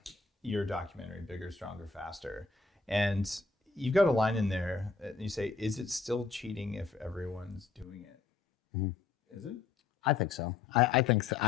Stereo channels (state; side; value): quieter; right; 4.5 dB